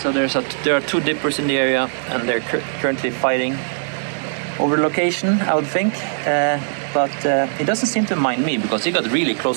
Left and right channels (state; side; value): silent; left; digital silence